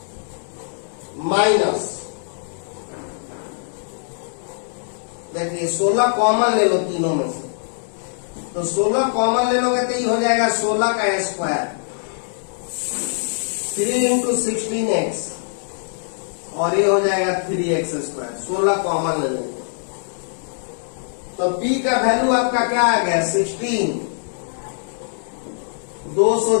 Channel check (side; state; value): right; silent; digital silence